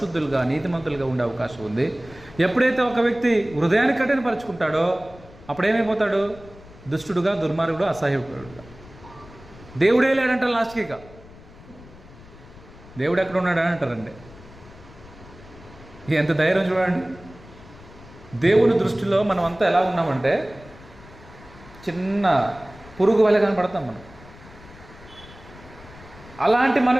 నీతిమంతులుగా ఉండే అవకాశం ఉంది. ఎప్పుడైతే ఒక వ్యక్తి హృదయాన్ని కఠినపరుచుకుంటాడో అప్పుడేమైపోతాడు? దుష్టుడుగా, దుర్మార్గుడు, అసహాయకుడుగా. దేవుడే లేడంటారు లాస్ట్కి. ఇక దేవుడు ఎక్కడ ఉన్నాడని అంటారండి. ఎంత ధైర్యం చూడండి. దేవుని దృష్టిలో మనం అంతా ఎలా ఉన్నామంటే చిన్న పురుగు వలె కనపడతాం మనం. అలాంటి మనం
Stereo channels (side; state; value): left; noise; rumble, 20 dB below the sound